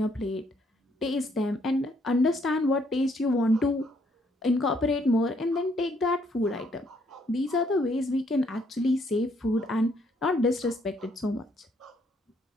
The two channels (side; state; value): both; normal; correlation 0.69